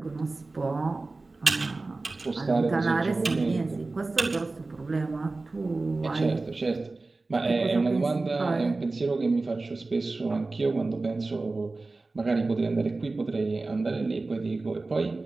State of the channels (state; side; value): quieter; left; 3.4 dB